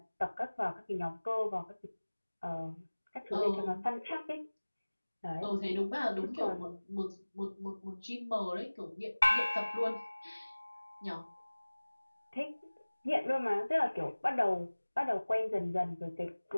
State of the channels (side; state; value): both; inverted; correlation -1.00